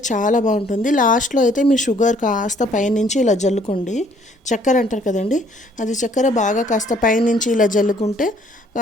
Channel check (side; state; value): both; normal; correlation 0.62